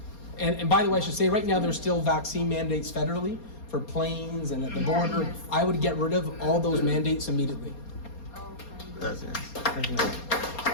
And by the way, I should say right now there's still vaccine mandates federally for planes and at the border. I would get rid of all those mandates immediately. That's it.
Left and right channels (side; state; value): right; late; 4.3 ms